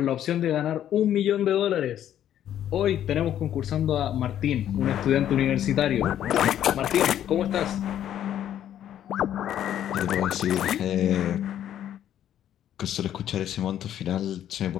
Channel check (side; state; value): right; quieter; 10.9 dB